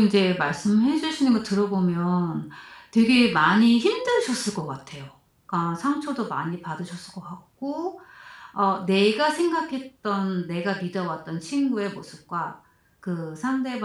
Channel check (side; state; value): both; identical; correlation 1.00